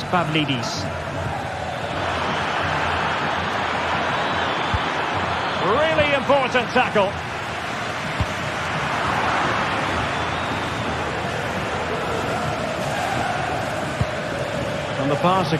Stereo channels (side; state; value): both; identical; correlation 1.00